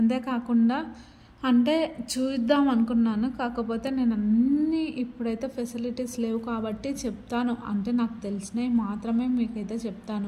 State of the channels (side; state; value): both; identical; correlation 1.00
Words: అంటే చూద్దాం అనుకున్నాను, కాకపోతే నేను అన్నీ ఇప్పుడైతే ఫెసిలిటీస్ లేవు కాబట్టి చెప్తాను, అంటే నాకు తెలిసినవి మాత్రమే మీకైతే